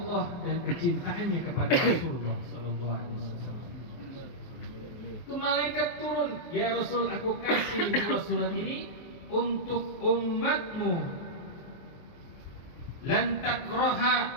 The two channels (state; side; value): late; right; 23 ms